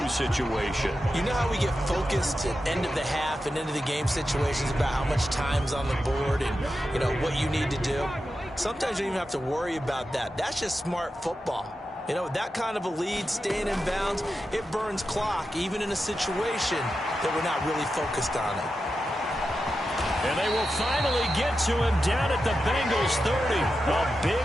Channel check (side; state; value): both; normal; correlation 0.90